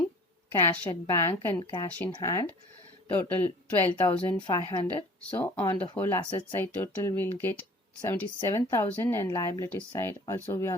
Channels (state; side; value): normal; both; correlation 0.47